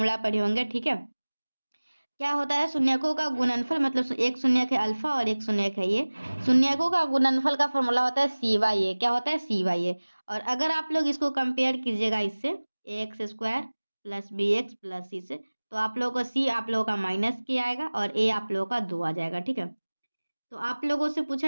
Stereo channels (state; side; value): inverted; both; correlation -1.00